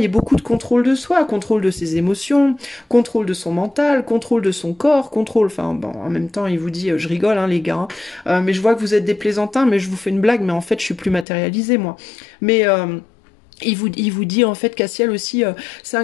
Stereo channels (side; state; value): right; drops out; at 11.2 s